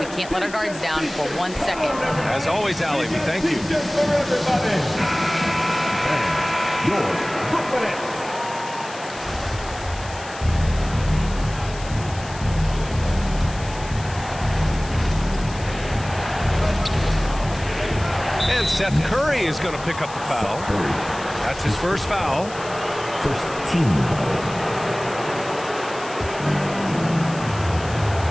can't let our guards down for 1 second." As always, Allie, we thank you. Your Brooklyn Nets. And Seth Curry is going to pick up the foul. That's his first foul. First team foul.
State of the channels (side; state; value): left; noise; hiss, 16 dB below the sound